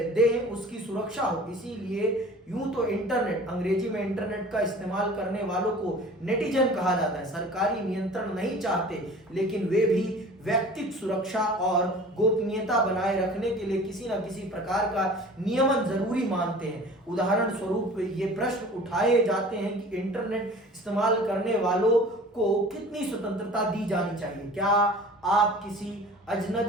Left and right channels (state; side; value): normal; both; correlation 0.44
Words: उसकी सुरक्षा हो। इसीलिए यूं तो इंटरनेट, अंग्रेजी में इंटरनेट का इस्तेमाल करने वालों को नेटिजन कहा जाता है। सरकारी नियंत्रण नहीं चाहते, लेकिन वे भी व्यक्तिगत सुरक्षा और गोपनीयता बनाए रखने के लिए किसी न किसी प्रकार का नियमन जरूरी मानते हैं। उदाहरण स्वरूप ये प्रश्न उठाए जाते हैं कि इंटरनेट इस्तेमाल करने वालों को कितनी स्वतंत्रता दी जानी चाहिए। क्या आप किसी